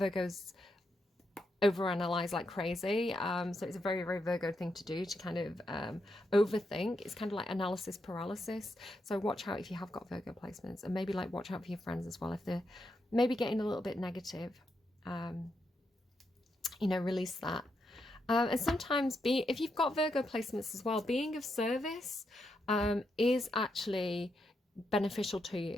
overanalyze like crazy, so it's a very, very Virgo thing to do, to kind of overthink. It's kind of like analysis paralysis. So watch out if you have got Virgo placements, and maybe like watch out for your friends as well if they're maybe getting a little bit negative. You know, release that. And sometimes if you've got Virgo placements as well, being of service is actually beneficial to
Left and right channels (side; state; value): both; normal; correlation 0.82